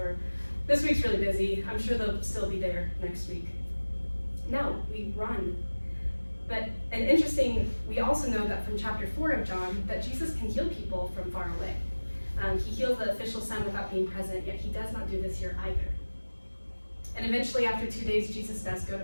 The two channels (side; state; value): both; inverted; correlation -1.00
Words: "this week's really busy, I'm sure sure they'll still be there next week. No, we run. And interesting, we also know that from chapter 4 of John, that Jesus can heal people from far away. He heals the official son without being present, yet he does not do this here either. And eventually, after 2 days, Jesus does go to